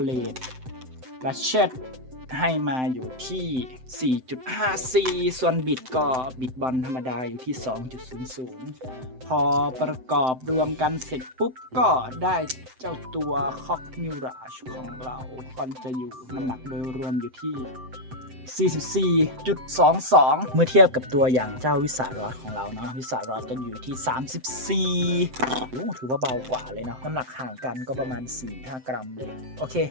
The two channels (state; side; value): late; left; 7.8 ms